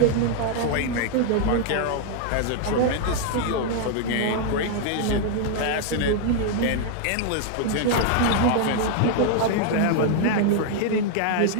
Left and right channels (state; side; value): different; both; correlation 0.00